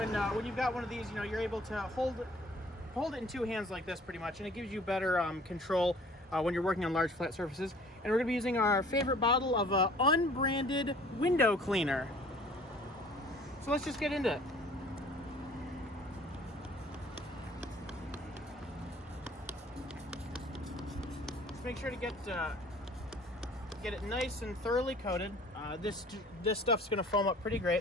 you've got one of these, you're able to hold it in two hands like this pretty much, and it gives you better control when you're working on large flat surfaces. And we're going to be using our favorite bottle of unbranded window cleaner. So let's just get into it. Just make sure to get it nice and thoroughly coated. This stuff's going to foam up pretty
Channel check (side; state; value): both; normal; correlation 0.52